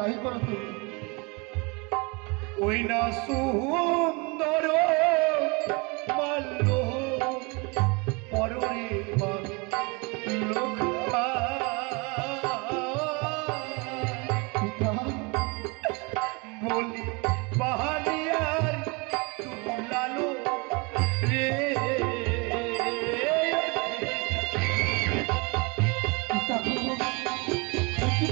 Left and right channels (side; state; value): left; quieter; 29.3 dB